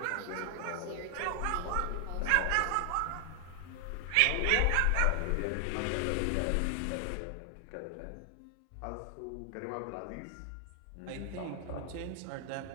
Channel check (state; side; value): different; both; correlation 0.00